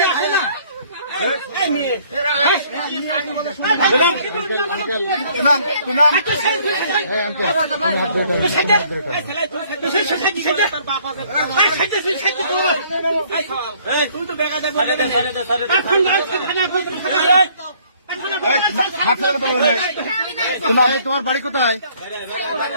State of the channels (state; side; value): inverted; both; correlation -0.61